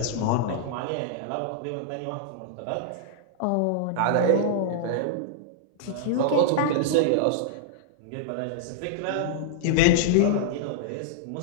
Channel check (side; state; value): both; different; correlation -0.01